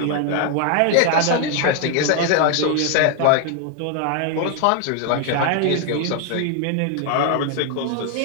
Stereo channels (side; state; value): both; different; correlation 0.00